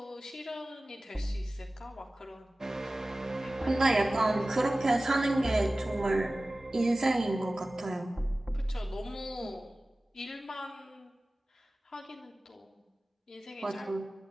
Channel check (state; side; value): normal; both; correlation 0.97